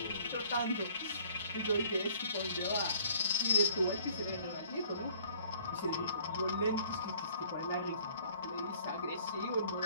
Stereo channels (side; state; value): both; inverted; correlation -0.57